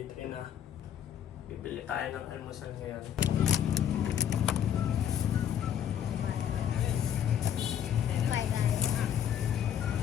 3 na. Bibili tayo ng almusal ngayon.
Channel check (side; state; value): right; quieter; 9.5 dB